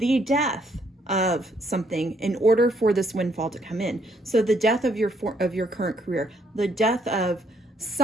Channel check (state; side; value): normal; both; correlation 0.69